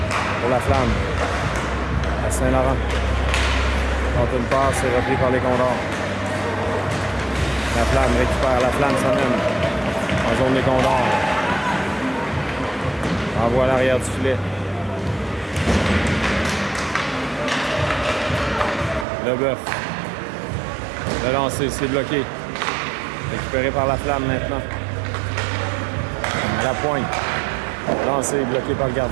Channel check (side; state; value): left; drops out; at 19.1 s